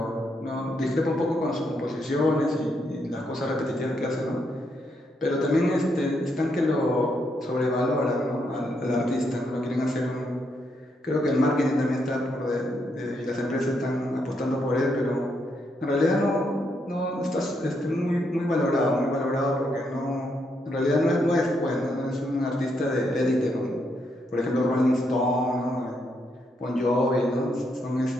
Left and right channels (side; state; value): both; normal; correlation 0.78